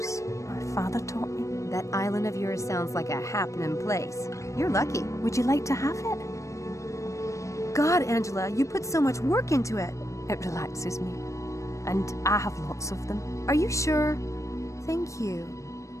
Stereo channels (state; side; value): late; right; 0.15 ms